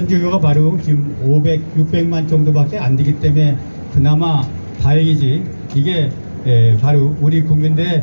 바로 지금 600만 정도밖에 안 되기 때문에 그나마 다행이지. 이게 바로 우리 국민들의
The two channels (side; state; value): both; inverted; correlation -1.00